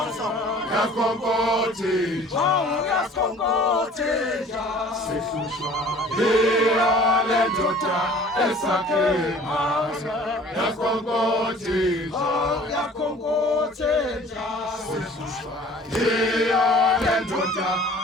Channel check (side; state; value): both; normal; correlation 0.49